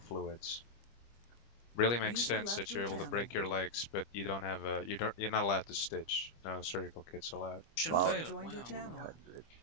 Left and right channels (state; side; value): late; right; 25 ms